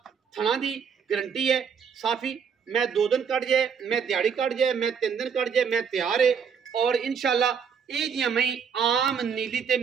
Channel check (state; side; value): quieter; left; 6.8 dB